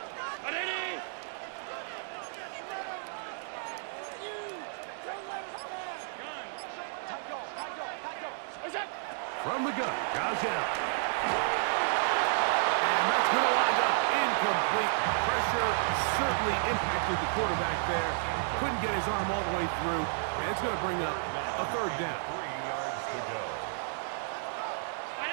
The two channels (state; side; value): silent; left; digital silence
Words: From the gun, goes out. And that's going to wind up incomplete. Pressure certainly impacted the quarterback there. Couldn't get his arm all the way through. And it's going to bring up a 3rd down. 3 yards to go.